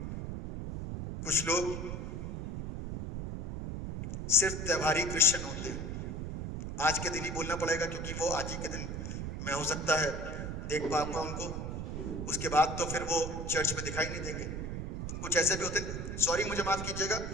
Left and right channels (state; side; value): noise; right; rumble, 5 dB below the sound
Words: कुछ लोग सिर्फ त्योहारी क्रिश्चियन होते हैं। आज के दिन ही बोलना पड़ेगा क्योंकि वो आज ही के दिन मैं हो सकता है देख पाऊंगा उनको, उसके बाद तो फिर वो चर्च में दिखाई नहीं देंगे। कुछ ऐसे भी होते हैं, सॉरी मुझे माफ कीजिएगा,